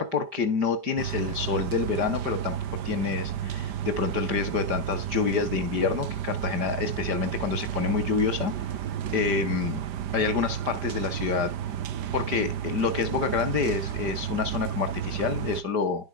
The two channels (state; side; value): late; left; 5.0 ms